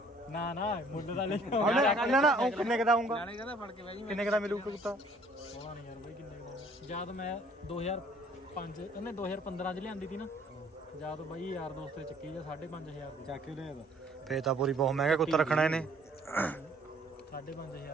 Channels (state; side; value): normal; both; correlation 0.59